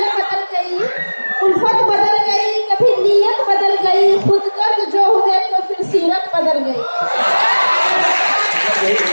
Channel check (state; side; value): inverted; both; correlation -1.00